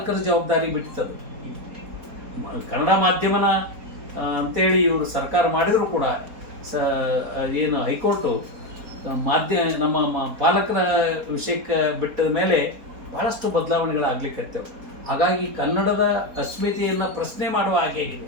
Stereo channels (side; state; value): left; late; 4.2 ms